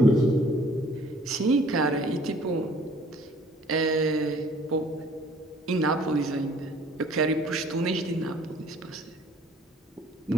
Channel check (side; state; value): both; normal; correlation 0.55